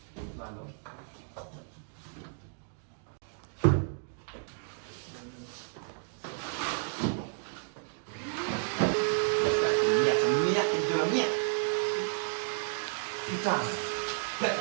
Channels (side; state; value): left; silent; 56 dB below the other